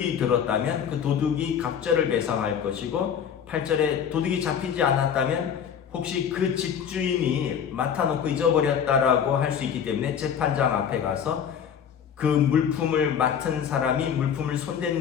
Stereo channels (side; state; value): right; quieter; 8.0 dB